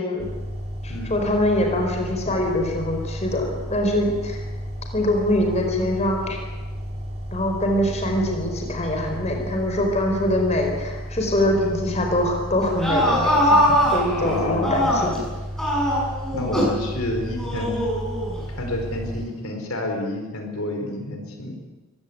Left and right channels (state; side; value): normal; both; correlation 0.39